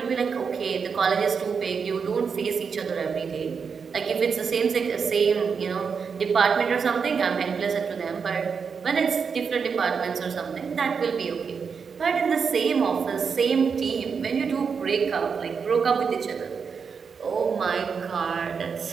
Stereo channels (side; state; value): left; quieter; 5.9 dB